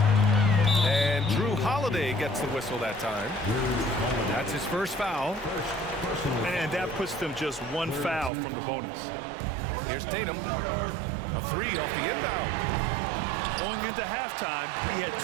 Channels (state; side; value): drops out; left; at 8.3 s